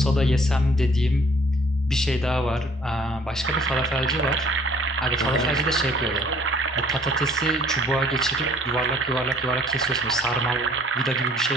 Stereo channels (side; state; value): both; normal; correlation 0.58